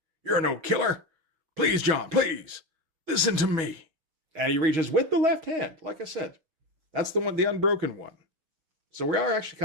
You're no killer. Please, John, please, listen to me." And he reaches with the left hand, like I said. That's the one, the unbroken one. So we are actually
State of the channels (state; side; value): late; left; 6.2 ms